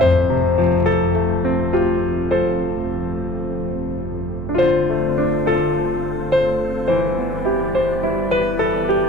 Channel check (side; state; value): right; noise; hum, 9 dB below the sound